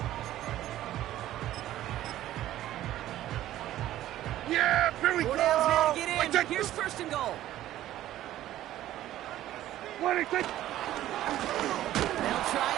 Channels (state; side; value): quieter; left; 13.6 dB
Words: Yeah, here we 4 go. downs now to get What in. do you think? Here's 1st and goal. What do you think? They'll try